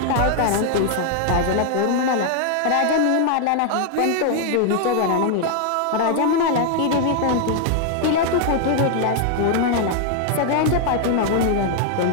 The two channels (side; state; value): both; different; correlation 0.00